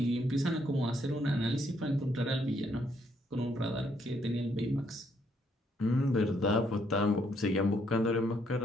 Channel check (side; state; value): both; normal; correlation 0.72